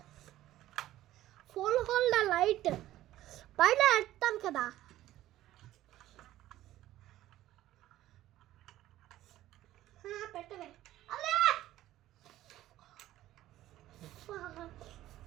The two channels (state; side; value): quieter; left; 14.5 dB